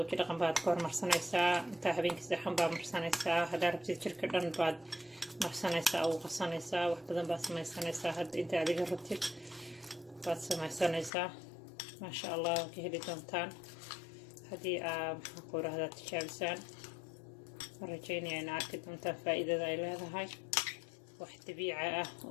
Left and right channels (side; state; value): right; drops out; at 11.1 s